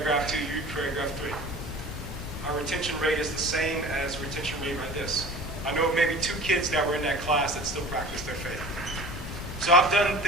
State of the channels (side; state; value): both; normal; correlation 0.41